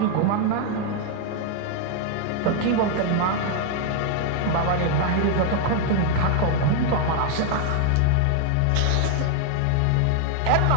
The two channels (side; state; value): both; different; correlation 0.00